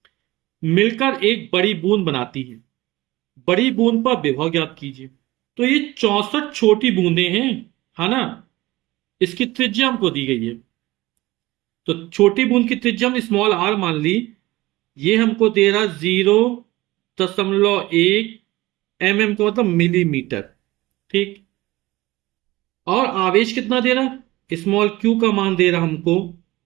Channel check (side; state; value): left; quieter; 19.0 dB